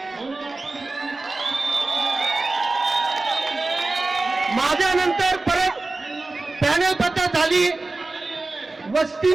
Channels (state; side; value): quieter; left; 3.3 dB